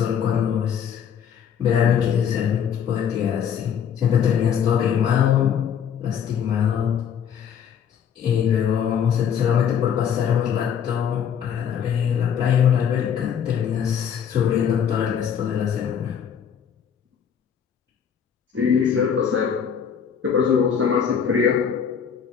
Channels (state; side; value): quieter; right; 8.0 dB